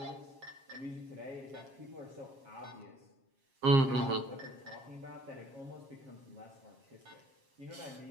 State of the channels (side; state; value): left; late; 7.4 ms